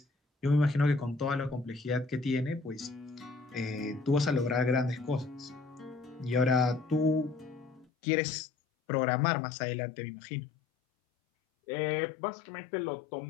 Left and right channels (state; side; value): drops out; right; at 7.9 s